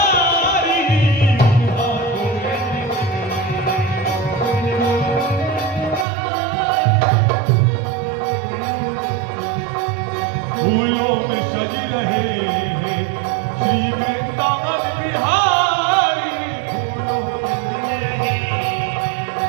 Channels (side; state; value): left; drops out; at 6.1 s